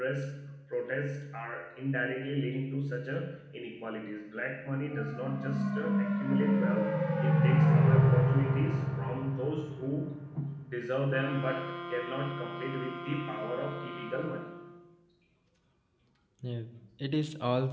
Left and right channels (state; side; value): identical; both; correlation 1.00